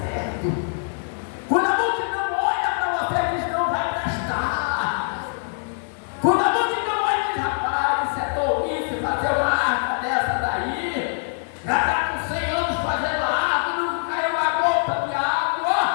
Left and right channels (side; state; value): right; silent; 63 dB below the other